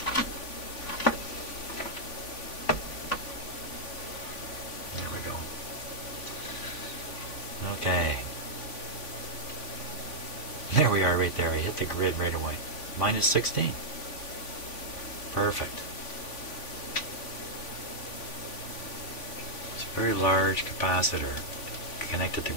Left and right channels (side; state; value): right; late; 3.5 ms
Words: Okay. There we are right there. I hit the grid right away. Minus 16. Perfect. It's a very large capacitor connected to